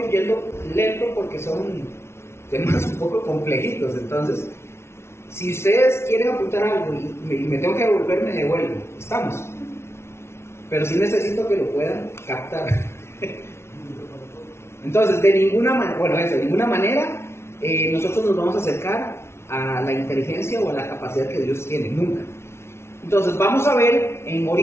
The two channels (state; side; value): late; right; 0.12 ms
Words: yendo lento porque son temas un poco complejitos. Entonces, si ustedes quieren apuntar algo y me tengo que devolver, me devuelvo. Estamos. Pero sí necesito que lo puedan captar. Entonces, de ninguna manera nosotros nos vamos a acercar a la inteligencia o a la capacidad que Dios tiene, nunca. Entonces, vamos a ver,